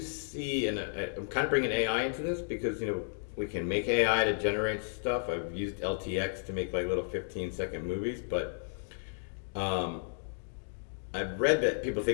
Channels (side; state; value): right; silent; digital silence